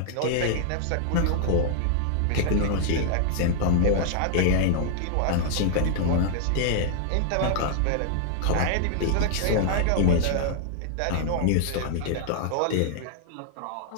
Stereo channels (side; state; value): both; different; correlation -0.01